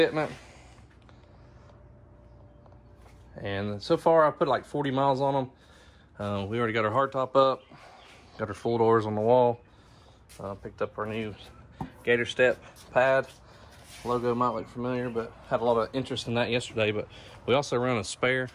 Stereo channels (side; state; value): both; identical; correlation 1.00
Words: And so far, I put like 40 miles on them. We already got our hardtop up, got our full doors on the wall. Picked up our new Gator Step pad. Logo might look familiar, but had a lot of interest in that yesterday. But we also run a spare.